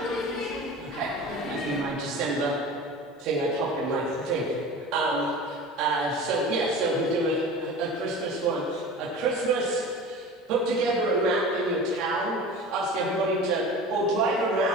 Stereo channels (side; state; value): both; normal; correlation 0.35